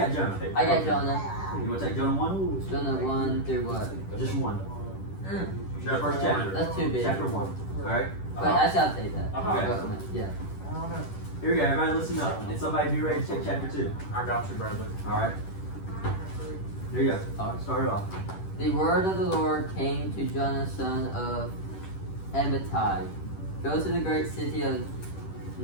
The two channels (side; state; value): right; late; 10 ms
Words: Jonah? I got Jonah. You want to take Jonah 1? Jonah 1 through what? Just 1. The Chapter first 1. chapter. That's too big. Chapter 1. Alright. But I shall take that. Okay. Yeah. Here we go. Everybody listen up. And somebody be ready to take chapter 2. I got you, Bradley. Alright. Here you go. Start it off. The word of the Lord came to Jonah, son of Amittai. Go to the great city of